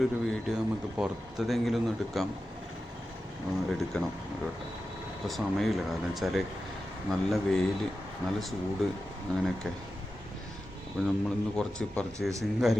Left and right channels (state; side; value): normal; both; correlation 0.92